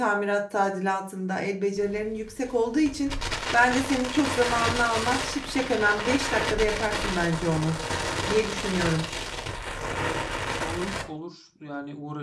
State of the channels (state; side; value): identical; both; correlation 1.00